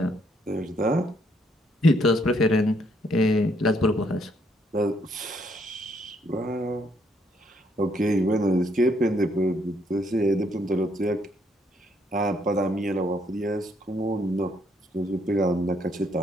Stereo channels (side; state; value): both; normal; correlation 0.70